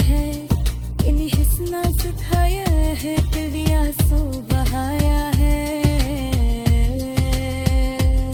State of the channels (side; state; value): both; identical; correlation 1.00